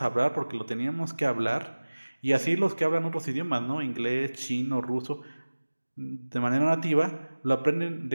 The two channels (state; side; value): inverted; both; correlation -1.00